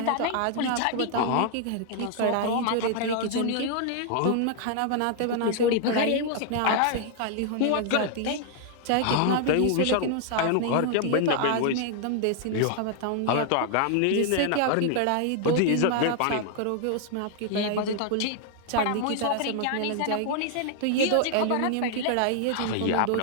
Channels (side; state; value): both; different; correlation 0.00